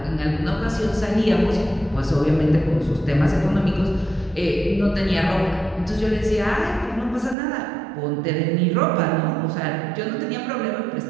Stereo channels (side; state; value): left; drops out; at 7.4 s